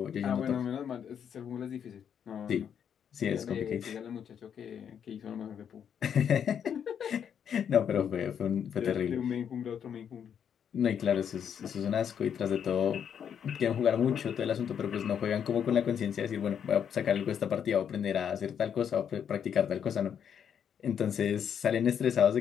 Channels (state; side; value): quieter; right; 8.2 dB